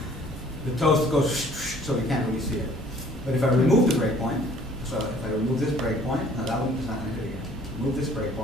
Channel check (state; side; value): normal; both; correlation 0.55